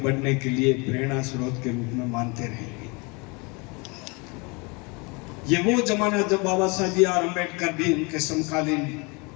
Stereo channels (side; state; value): right; quieter; 29.1 dB